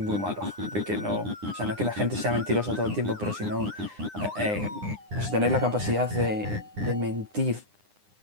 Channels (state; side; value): late; left; 9.8 ms